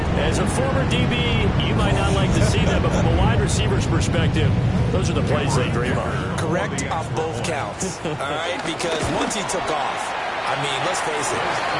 As a former DB, you might not like to see them, but from a wide receiver's perspective, those are the plays they dream of. Correct off both counts, all right? Because once he took off, I mean, let's face it,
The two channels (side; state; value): both; identical; correlation 1.00